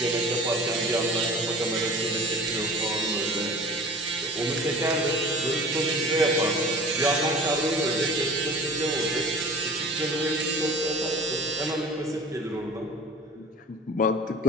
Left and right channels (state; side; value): normal; both; correlation 0.40